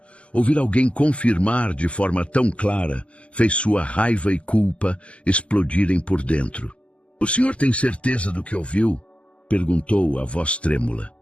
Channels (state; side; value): late; right; 0.059 ms